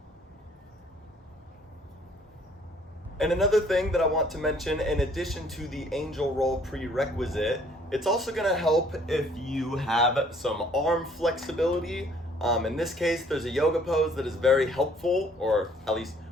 And another thing that I want to mention, in addition to the angel roll prerequisite, it's also going to help if you have some arm flexibility. In this case, there's a yoga pose that is very helpful, or at least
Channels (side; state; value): both; normal; correlation 0.60